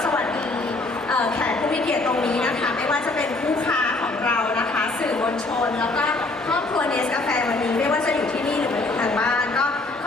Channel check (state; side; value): quieter; right; 3.1 dB